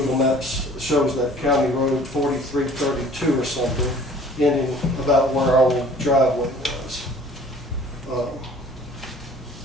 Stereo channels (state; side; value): normal; both; correlation 0.50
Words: Maps shows that County Road 4332 or something, ending about where our old driveway was.